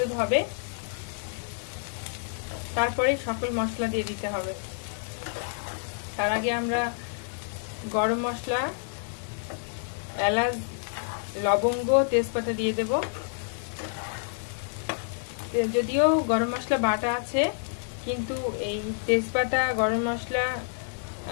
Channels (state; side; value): silent; right; 59 dB below the other